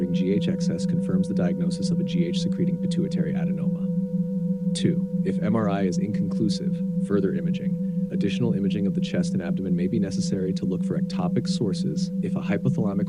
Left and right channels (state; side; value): noise; right; rumble, 27 dB below the sound